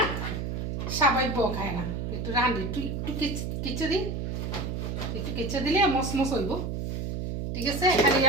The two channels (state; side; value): noise; right; hum, 3 dB below the sound